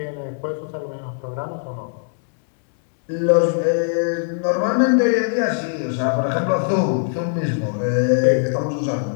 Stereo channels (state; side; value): silent; right; digital silence